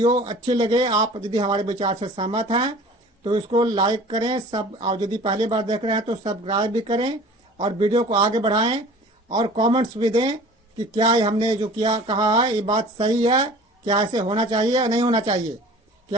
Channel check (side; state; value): both; normal; correlation 0.45